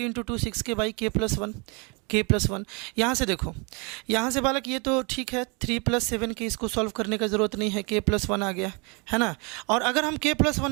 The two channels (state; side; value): quieter; left; 31.3 dB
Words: × 2 6k बाई k + 1। यहाँ से देखो, यहाँ से बालक ये तो ठीक है, 3 + 7k इसको सॉल्व करने का ज़रूरत नहीं है, k + 1 आ गया, है ना। और अगर हम k +